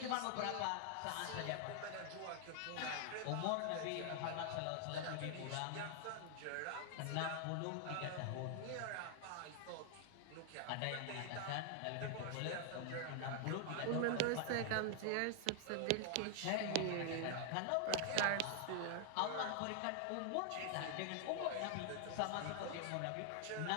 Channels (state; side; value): different; both; correlation 0.00